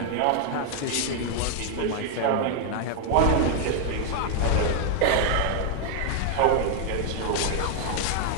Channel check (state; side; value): different; both; correlation 0.00